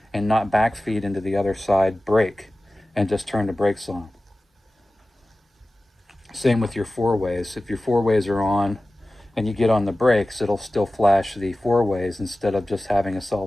and not backfeed into the other side brake and just turn the brakes on. Same with your 4-ways. If your 4-ways are on and you get on the brakes, it'll still flash the 4-ways instead of just having a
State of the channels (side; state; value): both; normal; correlation 0.96